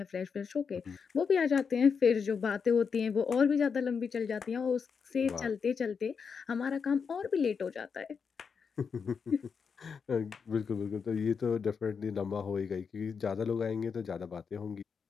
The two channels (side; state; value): right; quieter; 6.0 dB